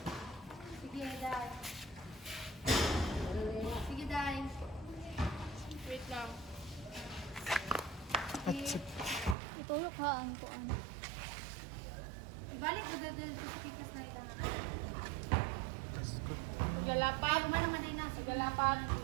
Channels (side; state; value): left; drops out; at 9.3 s